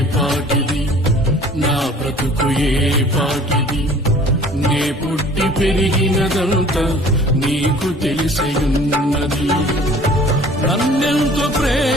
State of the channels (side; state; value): both; normal; correlation 0.50